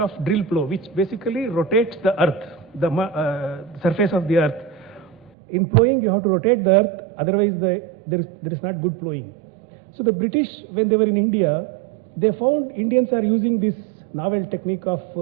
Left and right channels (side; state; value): left; drops out; at 5.3 s